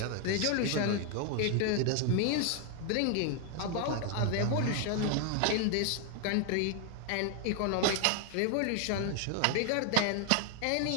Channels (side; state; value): both; different; correlation 0.00